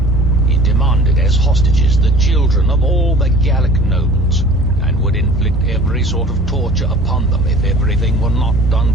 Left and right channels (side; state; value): both; normal; correlation 0.46